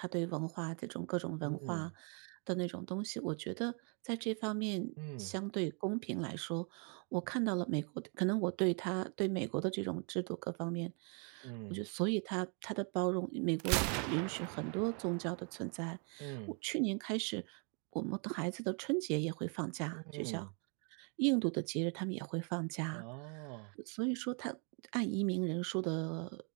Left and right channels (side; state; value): left; quieter; 38.2 dB